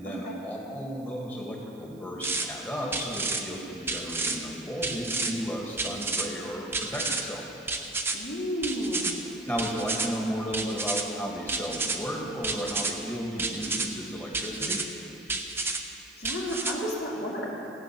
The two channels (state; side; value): noise; right; hiss, 28 dB below the sound